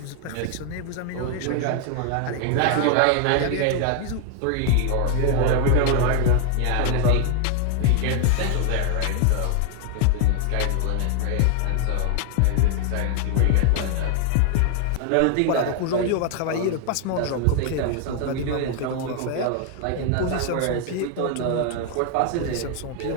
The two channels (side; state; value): both; different; correlation 0.00